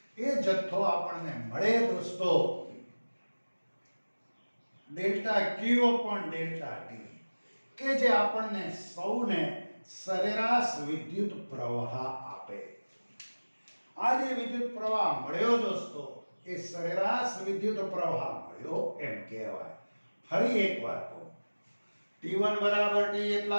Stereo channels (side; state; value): both; inverted; correlation -1.00